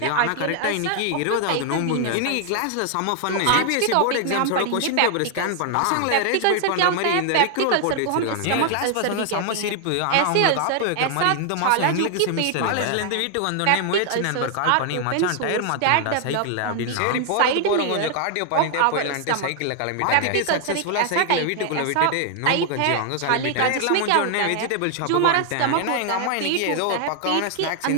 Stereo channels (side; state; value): both; different; correlation 0.00